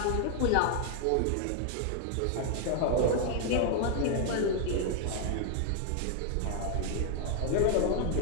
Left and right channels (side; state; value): both; different; correlation 0.00